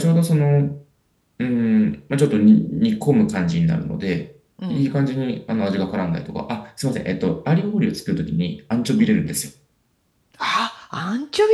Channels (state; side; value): identical; both; correlation 1.00